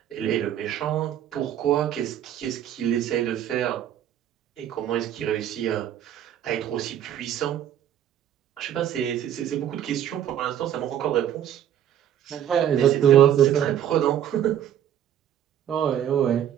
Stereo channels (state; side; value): quieter; left; 10.4 dB